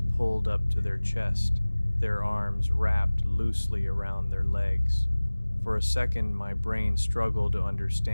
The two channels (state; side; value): inverted; both; correlation -1.00